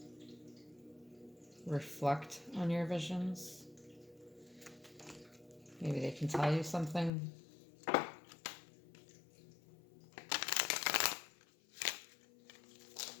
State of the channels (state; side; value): drops out; right; at 7.1 s